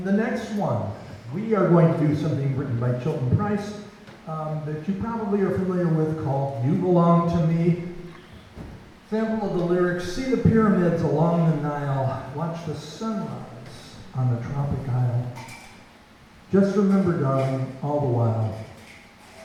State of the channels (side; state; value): both; identical; correlation 1.00